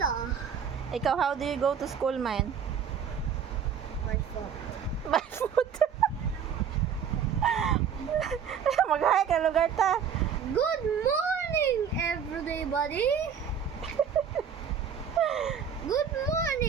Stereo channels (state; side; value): quieter; left; 7.4 dB